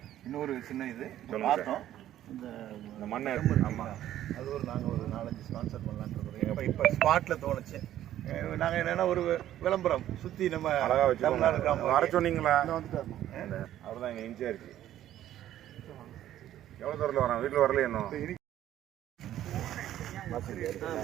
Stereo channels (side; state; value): left; quieter; 12.4 dB